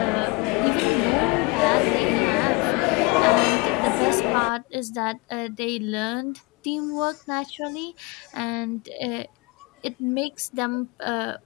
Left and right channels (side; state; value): right; quieter; 25.7 dB